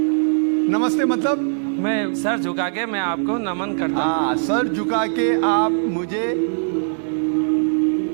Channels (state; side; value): silent; left; digital silence